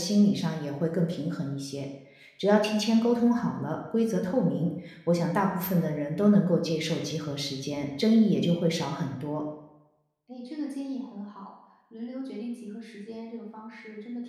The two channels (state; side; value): identical; both; correlation 1.00